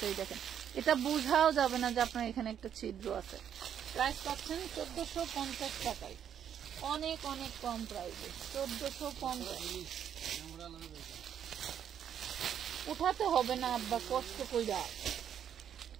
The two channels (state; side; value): quieter; left; 9.1 dB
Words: এই দেখেন এটা বোঝাও যাবে না যে আপনার এখানে একটা ছিদ্র আছে। প্রাইস পাচ্ছেন 1450 টাকায়, অনেক অনেক কম প্রাইসে 1450। উঠাতে হবে না আব্বা কষ্ট কইরা,